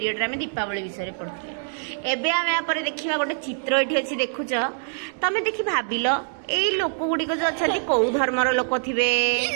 रे आमे दीपावली विषय रे पढ़िथिले एबे आमे या परे देखिबा गोटे चित्र एठी अछि देखुछ तमे देखि भाबिलो एई लोक गुडी को जो अछथि को धर्मर लोक थिबे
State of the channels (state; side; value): silent; left; digital silence